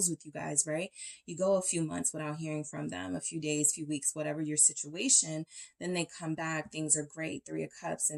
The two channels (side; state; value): both; identical; correlation 1.00